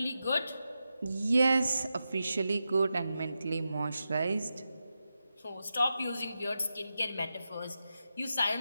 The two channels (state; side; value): inverted; both; correlation -0.90